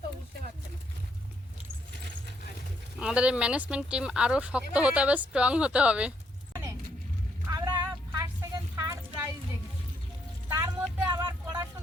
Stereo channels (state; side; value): normal; both; correlation 0.73